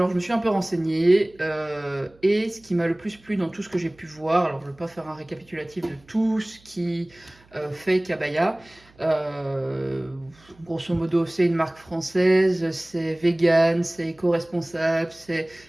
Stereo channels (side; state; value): right; noise; hum, 29 dB below the sound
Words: je me suis un peu renseignée et ce qui m'a le plus plu dans tout ce que j'ai pu voir, alors je ne vais pas faire un récapitulatif de tout ce qui fait Kabaya, grosso modo c'est une marque française, c'est vegan, c'est éco-responsable, c'est